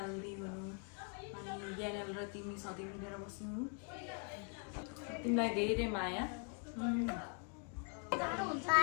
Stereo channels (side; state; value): right; quieter; 39.1 dB